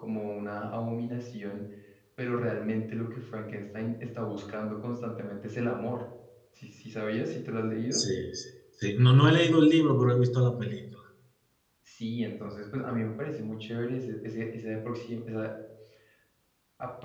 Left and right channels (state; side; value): identical; both; correlation 1.00